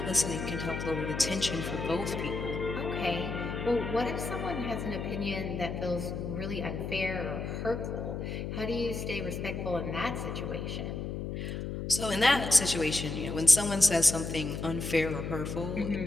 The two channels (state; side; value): noise; left; hum, 4 dB below the sound